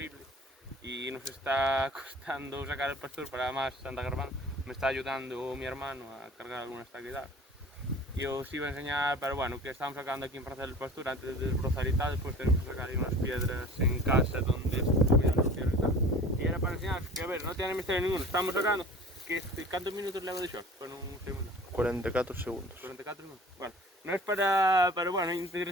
y nos está costando sacar el pastor para más Santa Grabando. Me está ayudando mi hermano a cargar algunas taquedadas. Y os iba a enseñar, pero bueno, que estamos sacando aquí en Plaza del Pastor antes de desbrozar y tal. Después tenemos que sacar ahí unas piedras en casa donde estuvieran los piedras y tal. Y era para enseñaros que, a ver, no tiene misterio ninguno. Estamos sacando que ¿cuántos minutos le hago de short? Bueno, un segundo. 44 segundos. 44 minutos. Bueno, no es para, pero bueno,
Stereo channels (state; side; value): normal; both; correlation 0.43